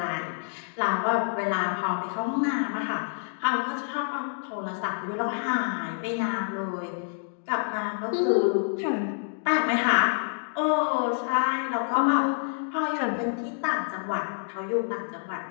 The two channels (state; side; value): silent; right; digital silence